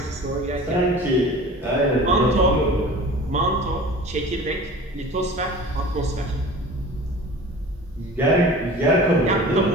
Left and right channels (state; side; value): normal; both; correlation 0.40